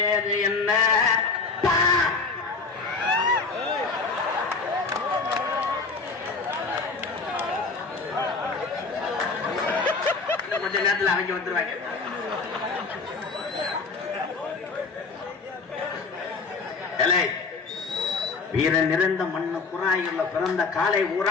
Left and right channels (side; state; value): right; quieter; 4.3 dB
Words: என்ன? கொஞ்ச நேரத்தில் அவங்க வந்துருவாங்க. வீரன் நிறைந்த மண்ணு குறாயுள்ள பிறந்த காலை